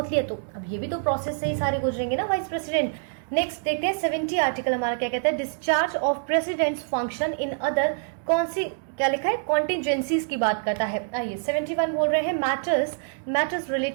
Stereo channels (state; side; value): silent; left; digital silence